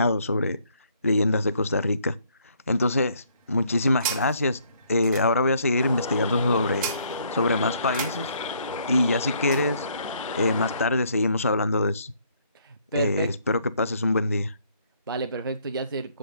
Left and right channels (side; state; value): both; inverted; correlation -0.66